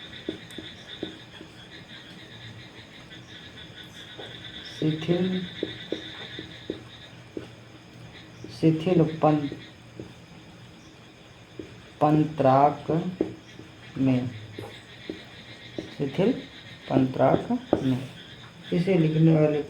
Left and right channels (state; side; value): identical; both; correlation 1.00